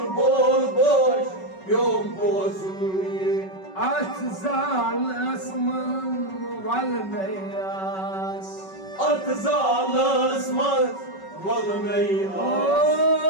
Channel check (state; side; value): late; right; 5.3 ms